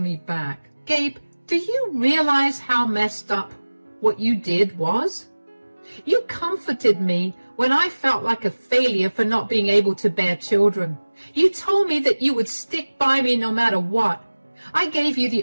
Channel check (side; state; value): both; inverted; correlation -1.00